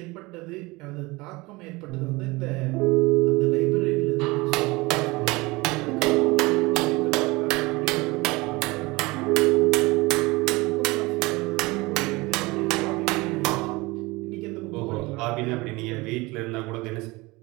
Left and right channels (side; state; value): left; quieter; 23.0 dB